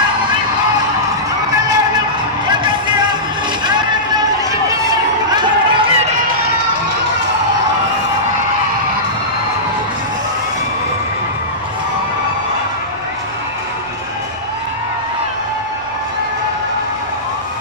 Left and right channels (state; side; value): noise; right; rumble, 27 dB below the sound